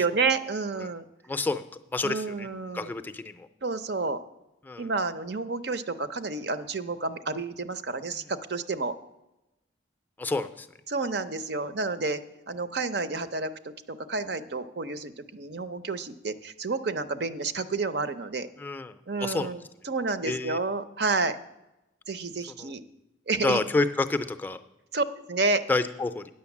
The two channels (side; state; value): both; normal; correlation 0.13